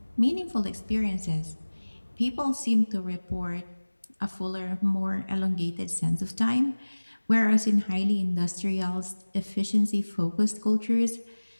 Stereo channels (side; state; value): both; inverted; correlation -1.00